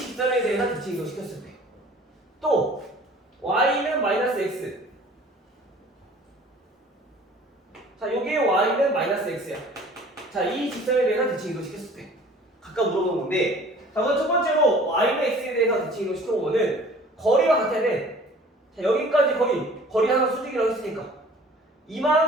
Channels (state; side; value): normal; both; correlation 0.49